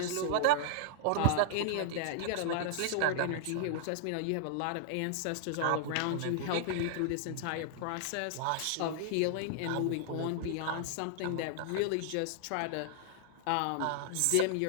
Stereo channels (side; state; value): both; different; correlation -0.01